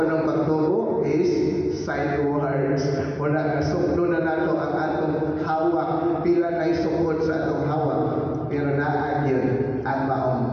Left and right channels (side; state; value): both; identical; correlation 1.00